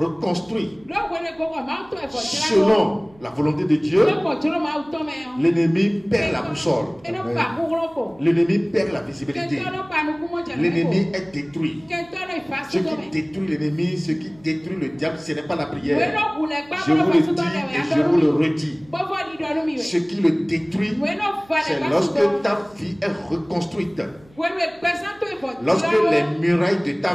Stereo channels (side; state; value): right; noise; hum, 27 dB below the sound